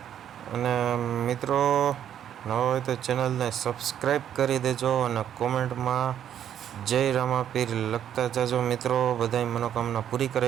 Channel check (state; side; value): quieter; left; 9.9 dB